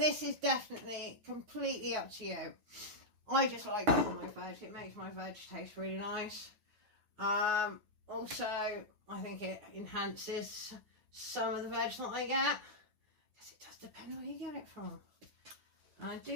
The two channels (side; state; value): left; late; 9.4 ms